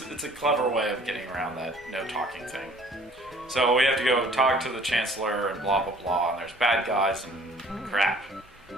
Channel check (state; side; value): normal; both; correlation 0.54